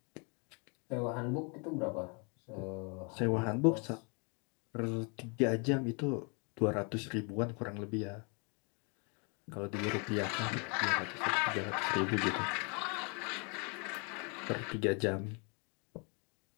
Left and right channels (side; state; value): right; quieter; 34.6 dB